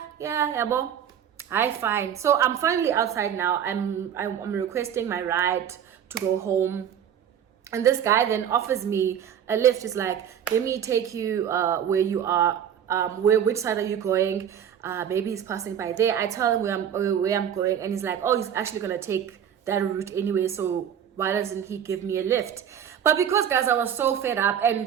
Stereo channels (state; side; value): quieter; left; 9.1 dB